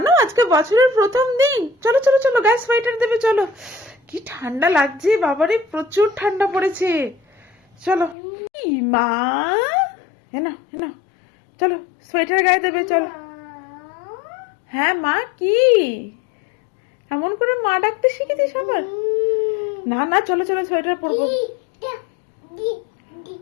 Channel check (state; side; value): drops out; right; at 8.2 s